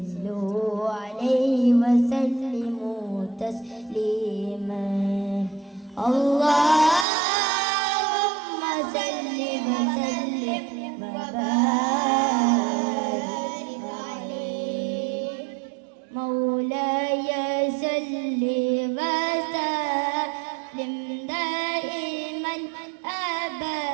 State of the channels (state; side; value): drops out; left; at 7.1 s